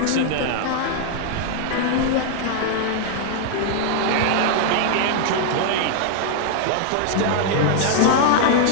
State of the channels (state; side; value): different; both; correlation 0.00